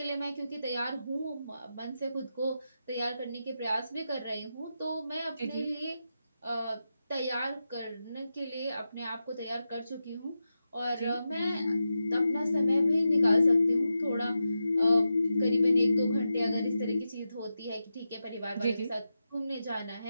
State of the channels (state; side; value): inverted; both; correlation -0.89